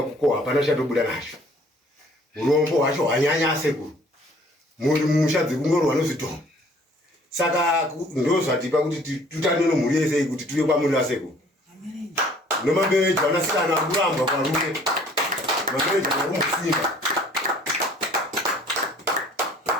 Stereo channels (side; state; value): both; normal; correlation 0.56